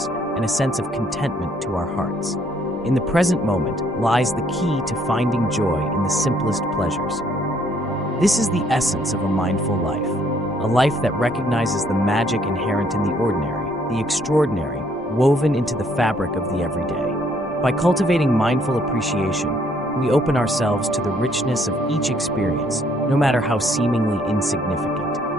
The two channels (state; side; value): normal; both; correlation 0.66